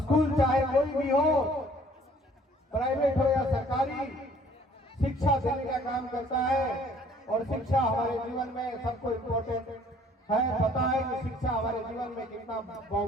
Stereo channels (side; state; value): both; normal; correlation 0.57